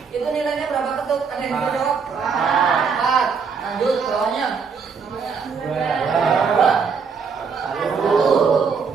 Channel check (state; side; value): quieter; left; 5.7 dB